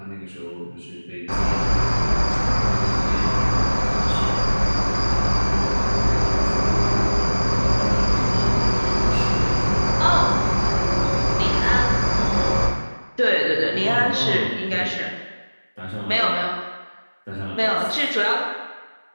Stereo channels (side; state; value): both; inverted; correlation -1.00